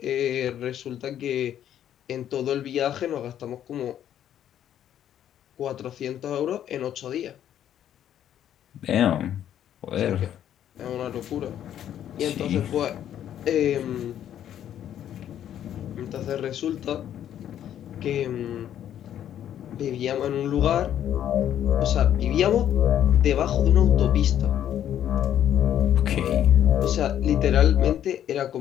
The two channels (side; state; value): right; quieter; 10.6 dB